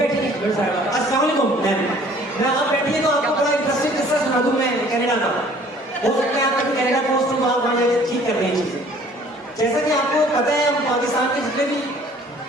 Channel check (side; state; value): both; normal; correlation 0.54